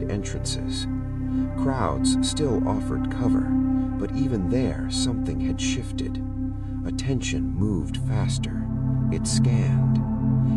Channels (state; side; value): identical; both; correlation 1.00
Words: entrances. Crowds still offered cover, but even there something had shifted. Attention moved faster. It scanned.